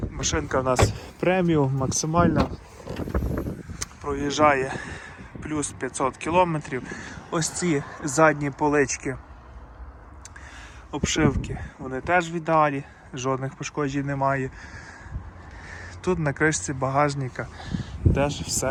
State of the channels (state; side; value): identical; both; correlation 1.00